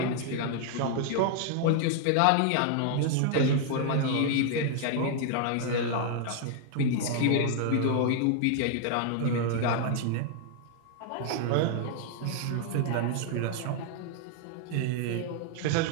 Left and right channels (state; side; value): different; both; correlation 0.00